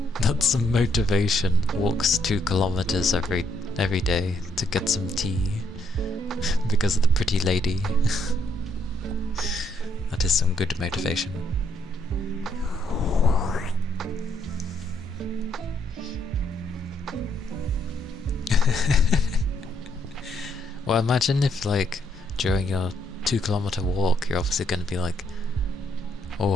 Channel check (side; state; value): both; normal; correlation 0.73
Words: That's some motivation. Walks 2 kilometers every day to get some tea because of the pretty lady. That is some good motivation. Well, imagine if, like, during your 2-kilometer walk, you're obviously going to be like,